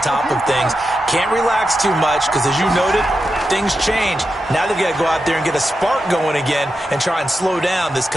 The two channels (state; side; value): normal; both; correlation 0.89